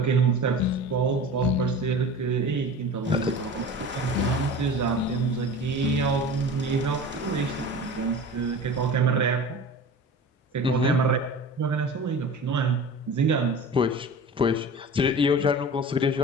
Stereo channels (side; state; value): both; normal; correlation 0.36